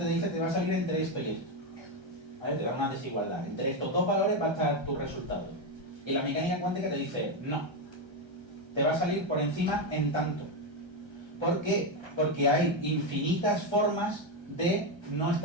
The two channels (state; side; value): late; left; 1.3 ms